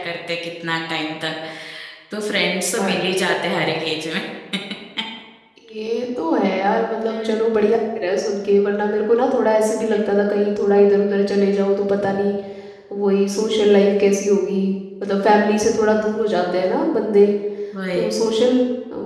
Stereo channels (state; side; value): identical; both; correlation 1.00